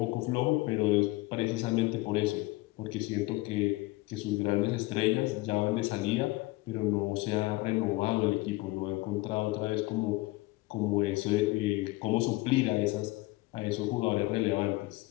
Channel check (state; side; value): quieter; right; 21.0 dB